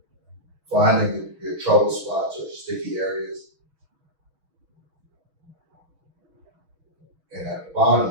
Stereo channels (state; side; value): late; left; 6.3 ms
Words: finding your trouble spots or sticky areas. And at the